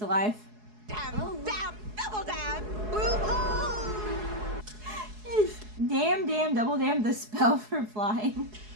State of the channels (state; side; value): late; left; 4.7 ms